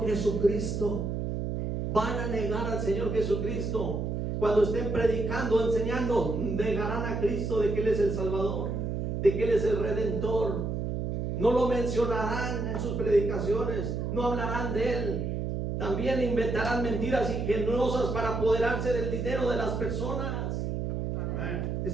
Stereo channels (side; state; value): right; noise; hum, 2 dB below the sound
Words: Jesucristo. Van a negar al Señor Jesucristo. Cuando estén predicando, enseñando, negarán a Cristo, de que Él es el Salvador, de que Él es el Redentor. No lo mencionarán en sus predicaciones, no hablarán de Él. También inventarán mentiras ingeniosas para apoderarse del dinero de las personas.